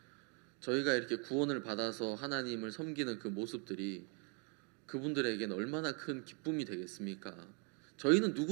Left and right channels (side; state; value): left; quieter; 35.8 dB